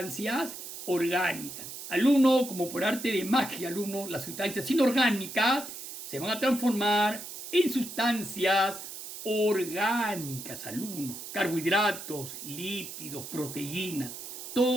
orgánicas. Al uno, como por arte de magia, las sustancias inorgánicas se van a transformar en sustancias orgánicas, carbohidratos, lípidos, proteínas,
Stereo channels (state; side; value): noise; right; hiss, 10 dB below the sound